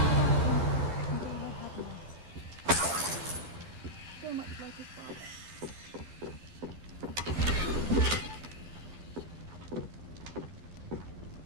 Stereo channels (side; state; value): left; late; 12 ms